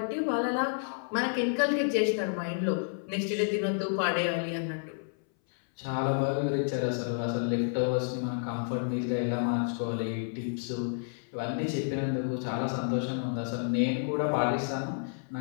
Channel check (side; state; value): right; silent; 58 dB below the other